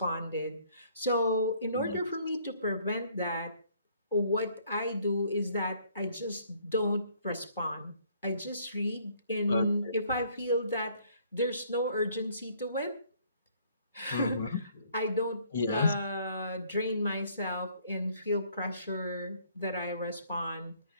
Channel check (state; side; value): inverted; both; correlation -0.63